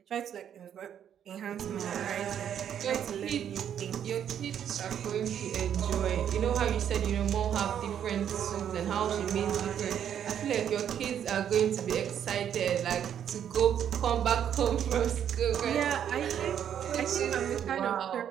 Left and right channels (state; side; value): quieter; left; 9.3 dB